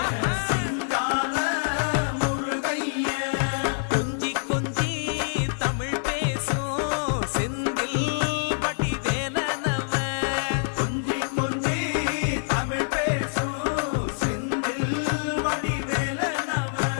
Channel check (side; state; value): right; silent; digital silence